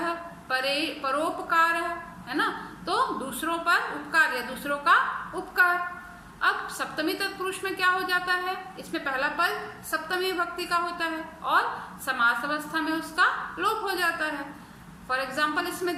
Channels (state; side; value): identical; both; correlation 1.00